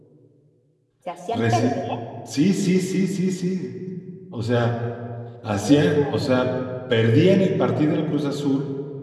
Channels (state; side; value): identical; both; correlation 1.00